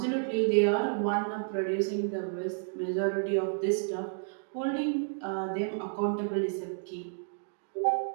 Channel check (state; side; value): silent; left; digital silence